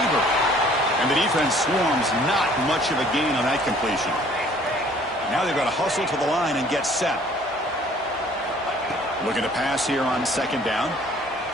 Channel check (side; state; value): both; normal; correlation 0.56